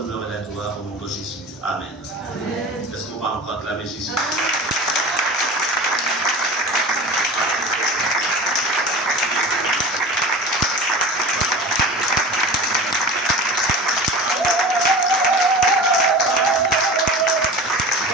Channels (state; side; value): normal; both; correlation 0.34